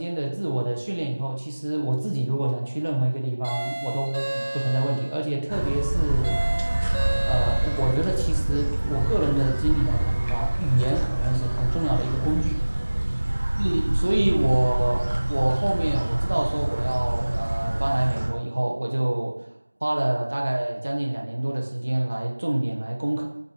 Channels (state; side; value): inverted; both; correlation -1.00